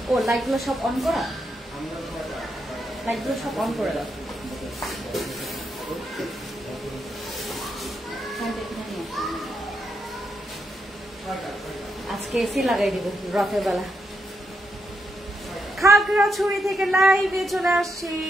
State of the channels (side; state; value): both; normal; correlation 0.81